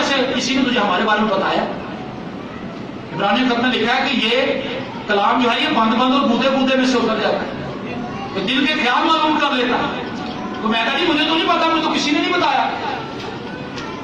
کسی نے تجھے ہمارے بارے میں بتایا۔ عبرانی خط میں لکھا ہے کہ یہ کلام جو ہے یہ بند بند اور بودے بودے میں سے اتر جاتا ہے، تو دل کے خیال معلوم کر لیتا ہے۔ تو میں کہا جی مجھے تو نہیں پتا، مجھے تو کسی نے نہیں بتایا۔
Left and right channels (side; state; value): both; identical; correlation 1.00